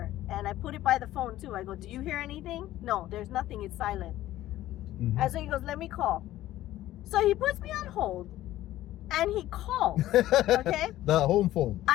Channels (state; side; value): quieter; right; 14.6 dB